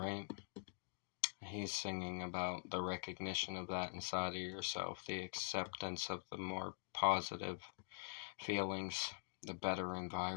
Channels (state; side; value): silent; right; digital silence